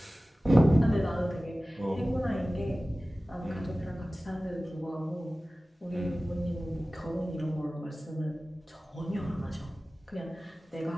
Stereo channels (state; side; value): normal; both; correlation 0.97